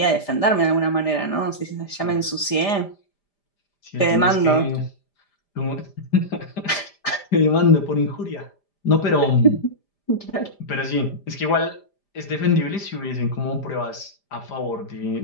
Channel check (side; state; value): right; late; 5.0 ms